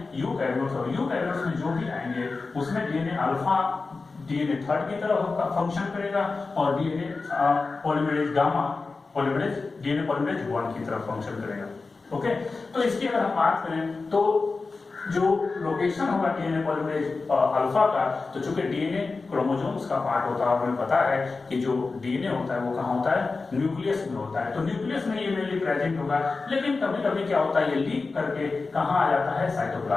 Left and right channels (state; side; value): quieter; right; 4.0 dB